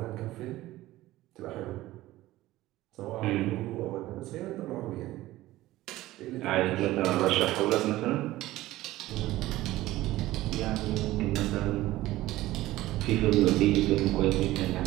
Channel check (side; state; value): left; quieter; 16.6 dB